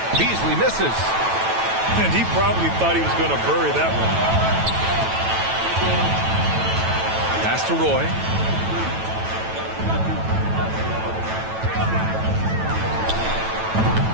Beasley misses. And he probably thought he was going to bury that one. Pass to Roy.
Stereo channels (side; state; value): left; late; 9.1 ms